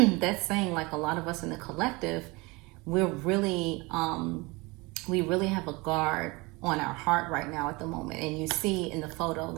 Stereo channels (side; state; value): left; quieter; 25.0 dB